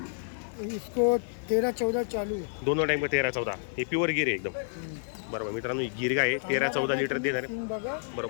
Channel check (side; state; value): right; silent; digital silence